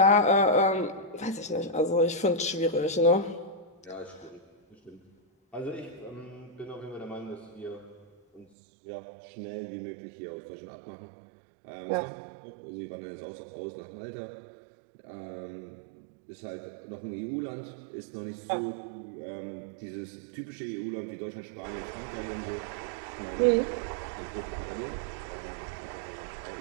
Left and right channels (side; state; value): left; drops out; at 8.5 s